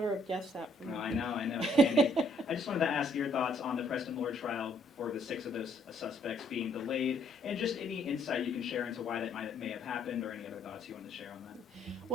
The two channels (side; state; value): both; normal; correlation 0.66